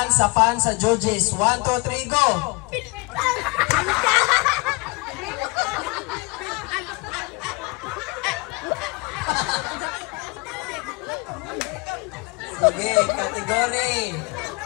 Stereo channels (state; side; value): quieter; right; 27.1 dB